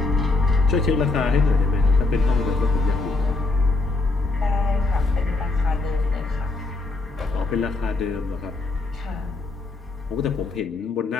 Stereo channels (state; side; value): quieter; right; 3.3 dB